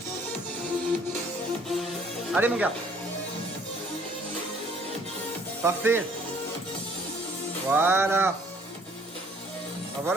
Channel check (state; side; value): normal; both; correlation 0.60